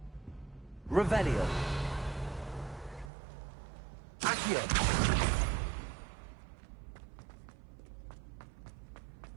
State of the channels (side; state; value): left; drops out; at 3.1 s